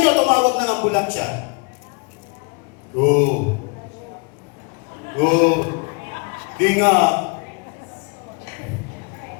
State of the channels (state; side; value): quieter; right; 32.6 dB